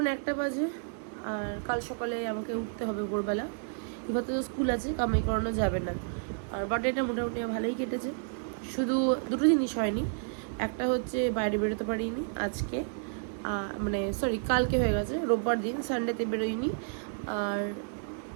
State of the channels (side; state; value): left; silent; digital silence